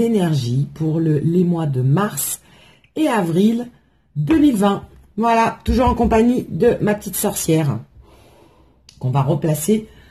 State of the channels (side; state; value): both; identical; correlation 1.00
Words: pour les mois de mars et avril 2020. Voilà, toujours en compagnie de ma petite sorcière qu'on va replacer